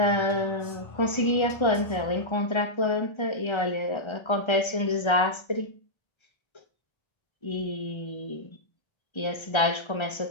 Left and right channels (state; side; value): late; right; 1.3 ms